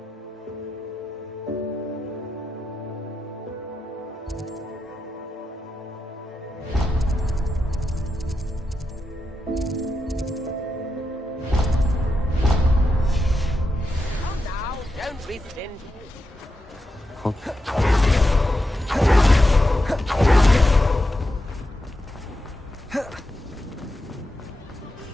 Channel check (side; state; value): both; normal; correlation 0.87